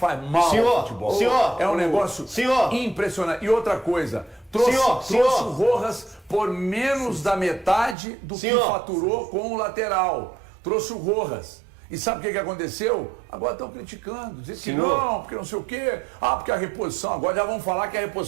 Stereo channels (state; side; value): drops out; left; at 8.0 s